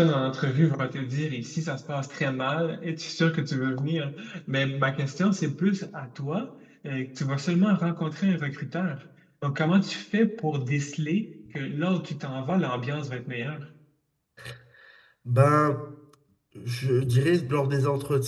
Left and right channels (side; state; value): both; identical; correlation 1.00